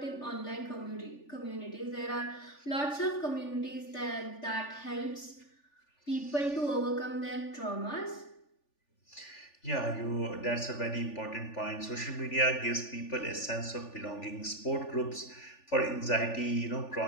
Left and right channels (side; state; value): right; late; 3.4 ms